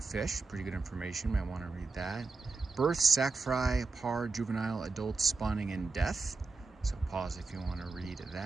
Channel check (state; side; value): quieter; left; 4.0 dB